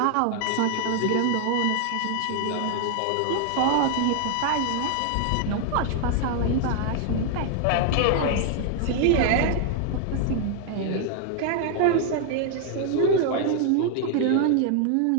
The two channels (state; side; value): different; both; correlation 0.00